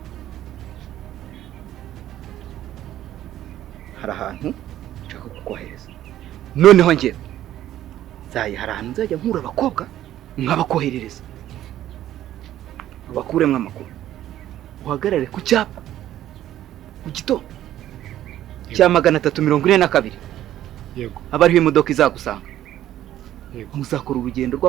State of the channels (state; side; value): quieter; left; 12.6 dB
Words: hari ahantu nshaka kukohereza. Noneho njye hari ahantu nzajya nkura abakobwa nkabakoherereza, bakuremwe amakuru. Uhagarare ku cyapa mu gitondo cya 342. Yego. Abariho imodoka izagusanga. Yego. Muzakora urugendo